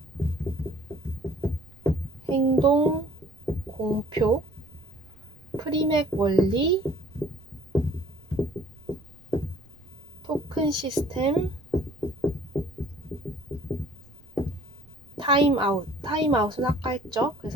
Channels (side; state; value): right; noise; rumble, 26 dB below the sound